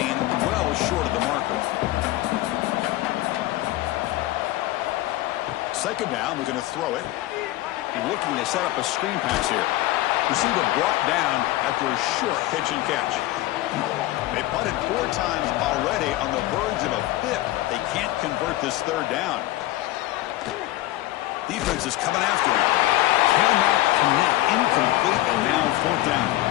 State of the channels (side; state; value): right; quieter; 16.7 dB